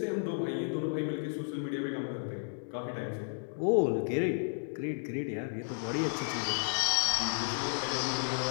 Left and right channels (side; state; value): right; silent; digital silence